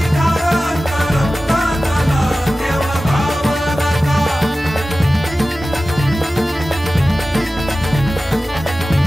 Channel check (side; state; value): both; normal; correlation 0.95